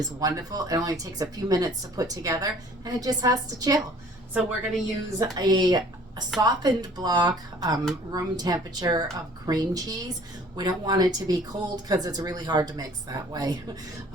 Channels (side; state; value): both; normal; correlation 0.53